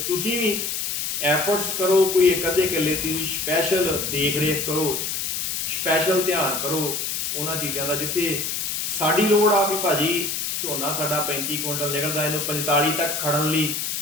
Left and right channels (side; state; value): left; noise; hiss, 2 dB below the sound